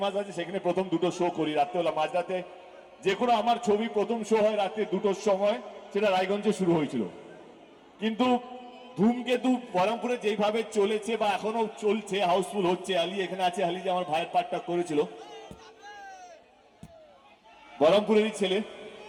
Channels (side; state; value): both; identical; correlation 1.00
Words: আছে, সেখানে প্রথম 2টো শো করি রাত্রেবেলা, মাঝরাতে। যে কোনো আমার ছবি প্রথম শো হয় রাত্রে 2টোর সময়, সেটা রায়গঞ্জে শুরু হয়েছিল। কিন্তু ধূমকেতু বহরমপুরে যেইভাবে চলেছে বা এখনো চলছে, হাউসফুল হচ্ছে। আলী এখানে আছে, আলী যে আমার ভাইয়ের পার্টটা করেছিল, বহরমপুরেরই ছেলে।